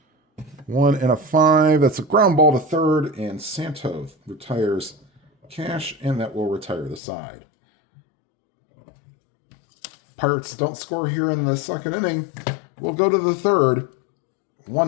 1 and a 5. That's a ground ball to third, and Santo retires Cash, and that will retire the side. Pirates don't score here in the second inning. We'll go to the third.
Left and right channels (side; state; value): right; drops out; at 7.0 s